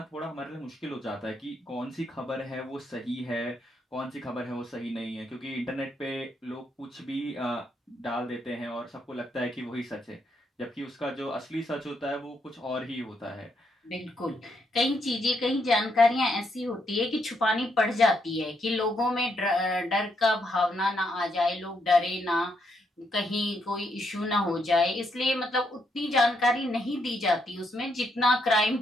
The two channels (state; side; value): normal; both; correlation 0.77